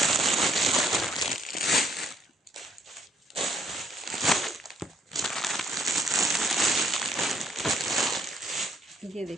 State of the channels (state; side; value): normal; both; correlation 0.68